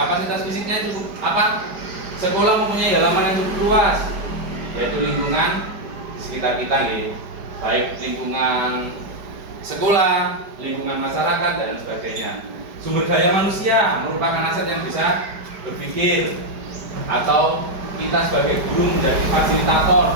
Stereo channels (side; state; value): left; late; 4.9 ms